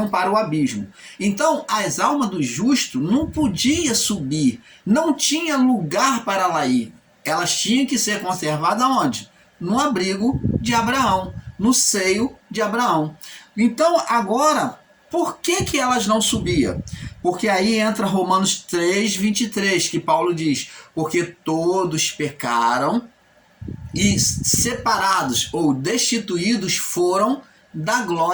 para o abismo. Então, as almas do justo não podiam subir, não tinha lugar para lá ir. Elas tinham que ser conservadas onde? No abrigo de Abraão, no seio de Abraão. Então, agora, por que elas não subiam? Porque aí entra Romanos 3, 23, que Paulo diz, porque todos pecaram e separados ou destituídos foram da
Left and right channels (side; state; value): both; identical; correlation 1.00